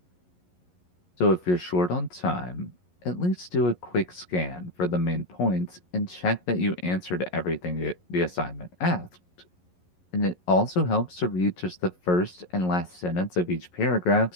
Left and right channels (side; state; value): right; late; 11 ms